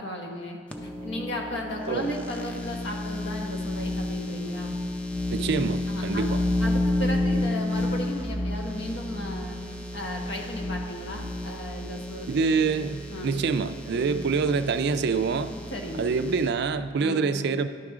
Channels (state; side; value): normal; both; correlation 0.55